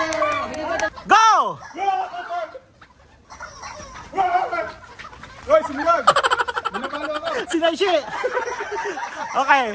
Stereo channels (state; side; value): identical; both; correlation 1.00